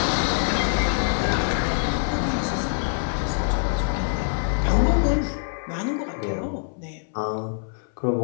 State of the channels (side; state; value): right; silent; 62 dB below the other